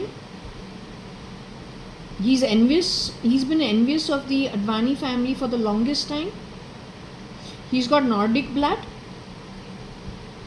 He's envious. He's been envious of the Advani family for the longest time. He's got Nordic blood.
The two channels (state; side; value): identical; both; correlation 1.00